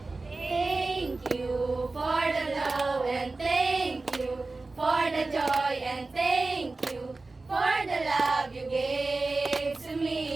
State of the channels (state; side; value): quieter; left; 3.5 dB